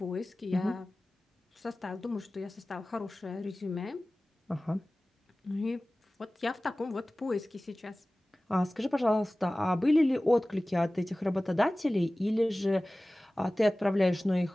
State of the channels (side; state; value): both; normal; correlation 0.98